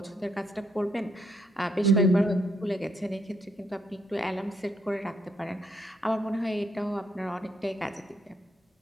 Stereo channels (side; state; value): both; normal; correlation 0.74